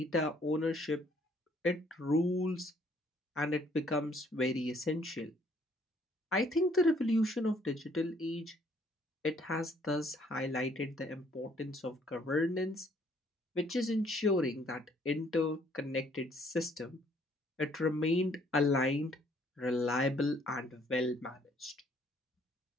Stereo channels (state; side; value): normal; both; correlation 0.63